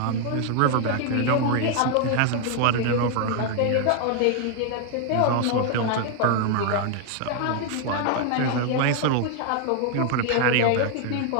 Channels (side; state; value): both; different; correlation 0.00